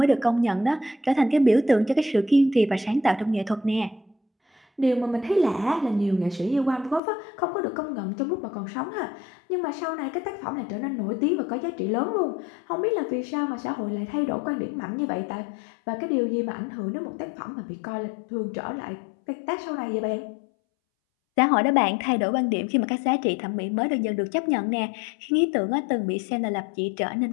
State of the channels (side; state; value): right; drops out; at 7.0 s